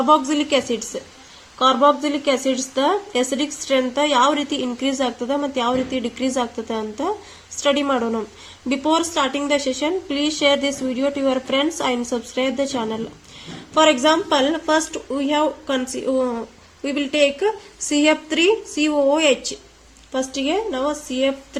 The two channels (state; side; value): identical; both; correlation 1.00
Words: acids. Carboxylic acids the acidic strength ಯಾವ ರೀತಿ increase ಆಗ್ತದ ಮತ್ತು ಯಾವ ರೀತಿ decrease ಆಗ್ತದ ಅಂತ study ಮಾಡೋಣ. Before starting the session, please share this video to your friends and subscribe the channel. For example, first we will take CF3COOH. First ಗೆ ನಾವು